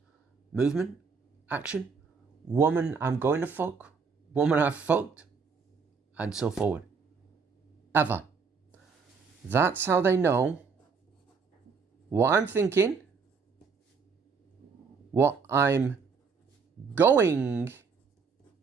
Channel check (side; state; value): left; quieter; 5.3 dB